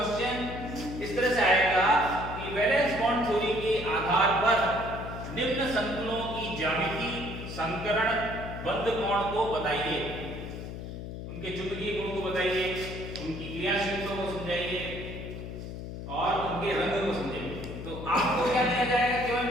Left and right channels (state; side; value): noise; left; hum, 8 dB below the sound